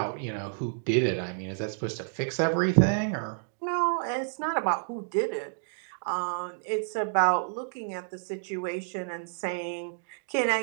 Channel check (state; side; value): silent; left; digital silence